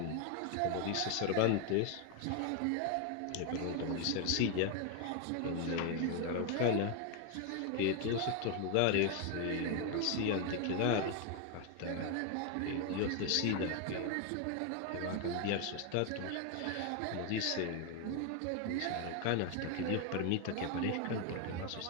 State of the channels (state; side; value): different; both; correlation 0.01